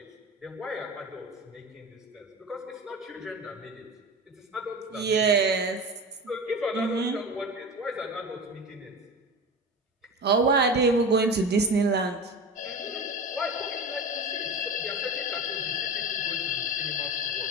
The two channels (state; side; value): normal; both; correlation 0.29